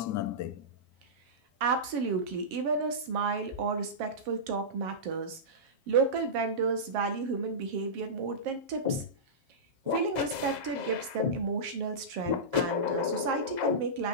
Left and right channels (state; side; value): late; left; 7.4 ms